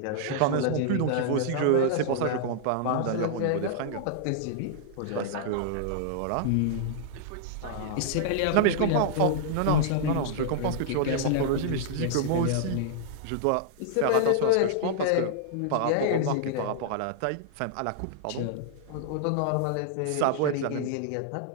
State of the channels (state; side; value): different; both; correlation -0.01